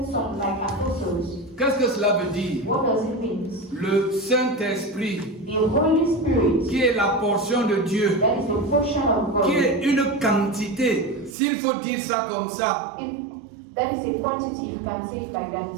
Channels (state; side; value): drops out; left; at 11.4 s